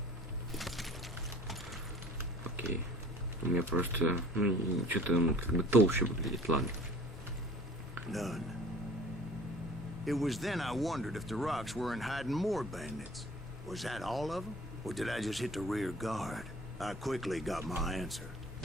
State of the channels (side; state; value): both; normal; correlation 0.49